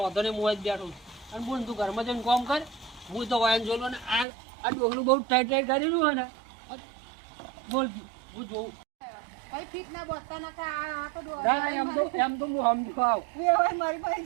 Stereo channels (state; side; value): drops out; left; at 4.2 s